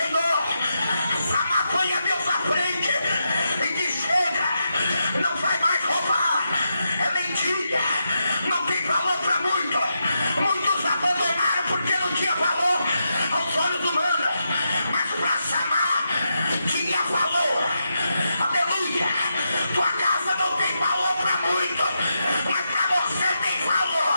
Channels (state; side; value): inverted; both; correlation -0.85